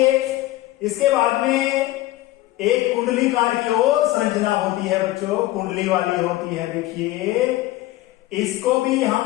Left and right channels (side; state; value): right; quieter; 16.8 dB